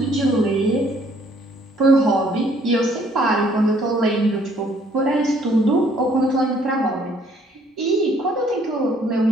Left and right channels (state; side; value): normal; both; correlation 0.63